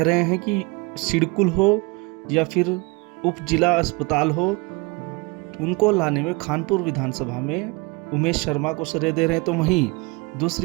रहे हैं कि सिडकुल हो या फिर उप जिला अस्पताल हो, उनको लाने में खानपुर विधानसभा में उमेश शर्मा को श्रेय दे रहे हैं। तो वहीं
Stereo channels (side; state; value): left; quieter; 27.2 dB